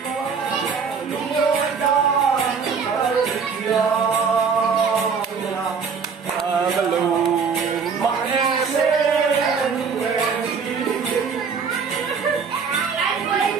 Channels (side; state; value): left; quieter; 5.7 dB